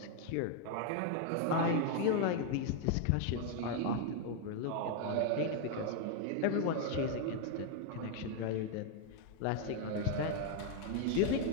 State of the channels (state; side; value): different; both; correlation 0.00